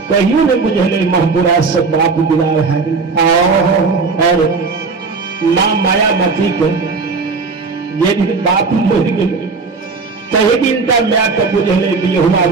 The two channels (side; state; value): left; quieter; 4.5 dB